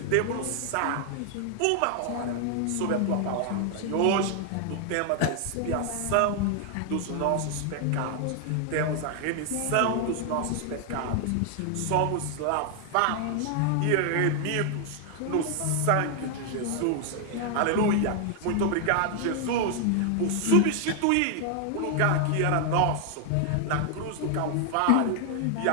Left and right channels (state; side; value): different; both; correlation 0.00